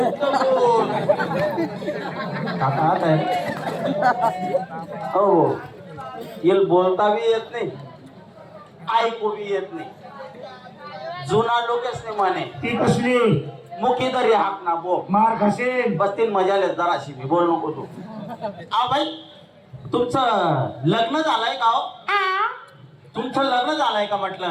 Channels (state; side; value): identical; both; correlation 1.00